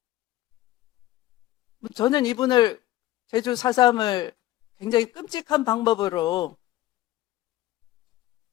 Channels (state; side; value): quieter; right; 15.5 dB